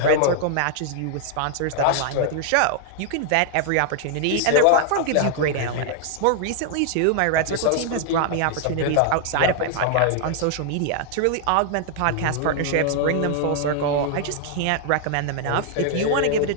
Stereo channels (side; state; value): both; different; correlation 0.00